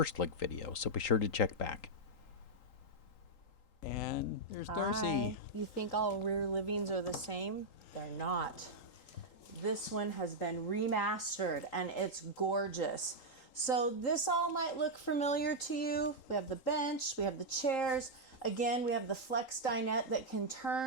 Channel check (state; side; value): late; right; 3.8 ms